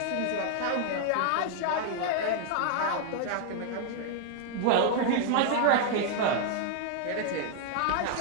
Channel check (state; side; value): different; both; correlation 0.00